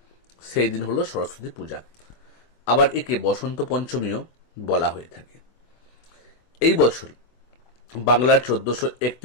সেই দিন হলো সরস্বতী পূজা। আবার একে বসন্ত পঞ্চমীও বলা হয়ে থাকে। এই বছর বাংলার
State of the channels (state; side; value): late; right; 24 ms